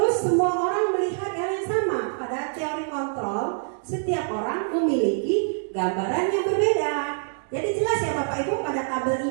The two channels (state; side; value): silent; left; digital silence